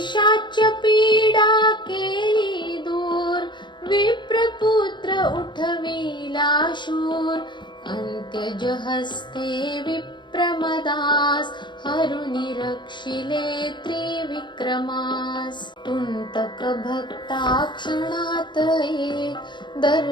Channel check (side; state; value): right; late; 0.22 ms